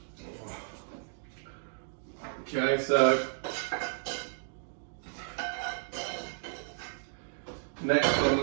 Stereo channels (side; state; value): left; silent; digital silence